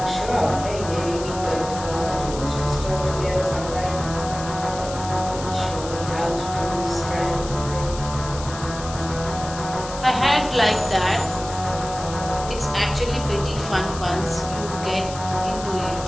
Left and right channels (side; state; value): left; noise; hiss, 12 dB below the sound